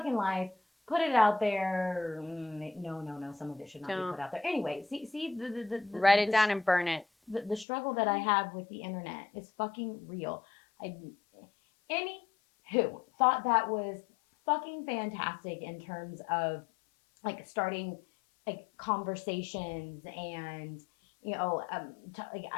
life. Put it out there. No. Some of it should not be put out there. Anyway, see the write it down and burn it. The struggle that I have with the internet is fucking real. Anywho, thought that was fucking fantastic in terms of like starting like conversations and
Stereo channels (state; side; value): drops out; right; at 7.7 s